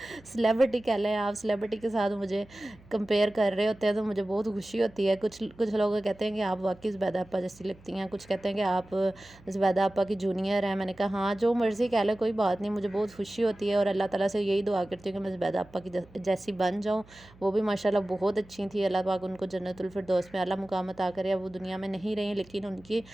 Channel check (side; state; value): right; noise; hum, 25 dB below the sound